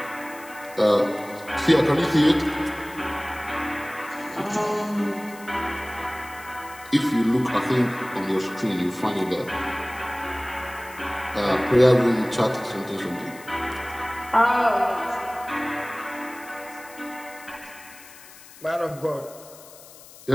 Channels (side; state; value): left; noise; hiss, 20 dB below the sound